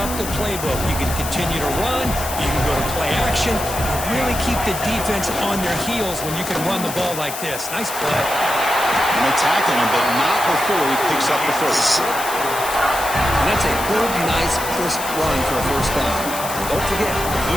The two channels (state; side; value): noise; left; hiss, 8 dB below the sound